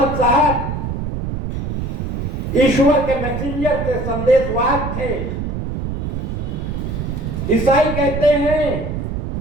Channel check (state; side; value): noise; right; rumble, 4 dB below the sound